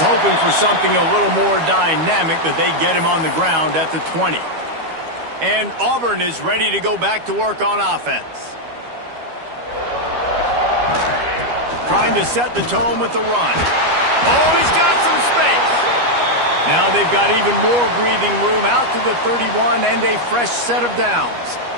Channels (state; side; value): late; left; 12 ms